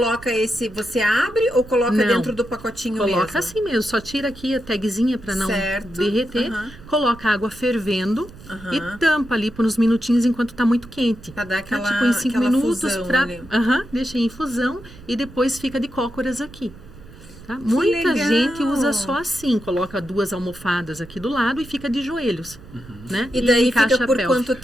esse, você abre ou coloca Não. dentro do pacotinho mesmo? Coloca assim mesmo, só tira aqui a tagzinha para não Certo. derreter. Coloca a água fervendo Aham. e tampa ali por uns minutinhos enquanto tá muito quente. Pra dar aquela, Tipo em 5 aquela minutos fusão pra. ali. Deixa em infusão e depois fica de cócoras aqui. Tá? Muita legal. gente usa só assim, coloca 2 almofadas aqui do lado e fica de joelhos. Né? E daí encaixa fica por a pelve. quanto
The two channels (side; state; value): right; noise; rumble, 19 dB below the sound